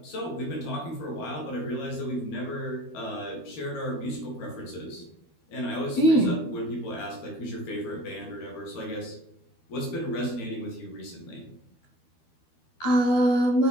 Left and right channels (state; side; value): late; right; 12 ms